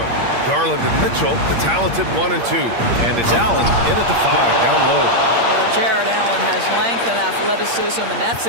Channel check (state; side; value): late; left; 8.6 ms